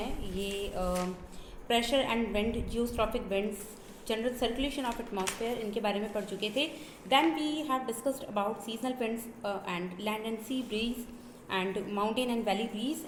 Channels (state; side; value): identical; both; correlation 1.00